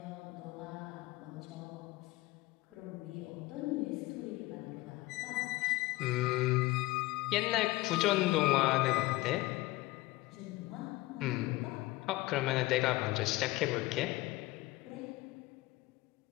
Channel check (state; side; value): quieter; right; 19.7 dB